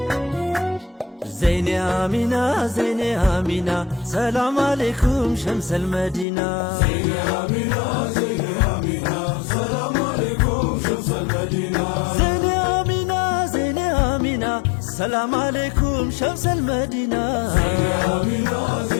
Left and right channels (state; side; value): drops out; right; at 6.2 s